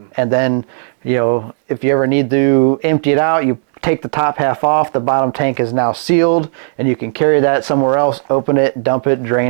And then, if you ever need to empty it out, you take the top half off. The bottom tank is now sealed, and you can carry that somewhere else, open it, dump it,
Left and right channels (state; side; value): silent; left; digital silence